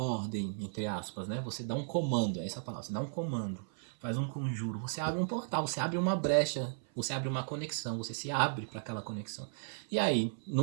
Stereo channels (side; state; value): left; silent; 54 dB below the other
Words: entre aspas, né? Você dá um comando, é essa a palavra, você dá um comando, faz um conjuro, você abre um portal, você abre uma brecha, você abre uma conexão, você se abre para aquela conexão. E aí,